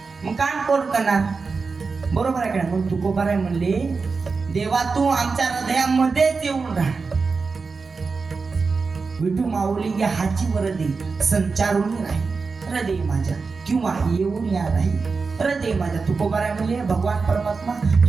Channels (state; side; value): quieter; left; 4.6 dB